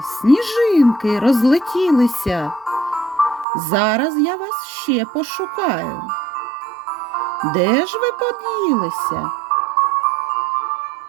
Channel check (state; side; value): drops out; left; at 3.5 s